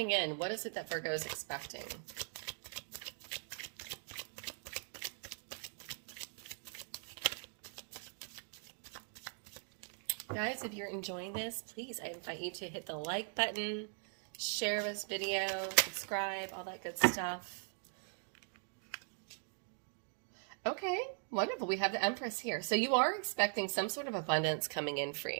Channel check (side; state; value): left; silent; 51 dB below the other